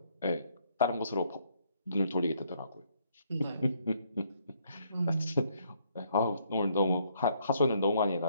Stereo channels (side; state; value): both; inverted; correlation -0.70